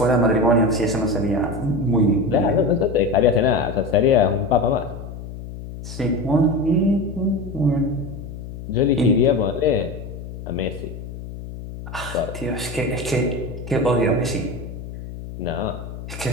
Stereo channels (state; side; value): noise; left; hum, 11 dB below the sound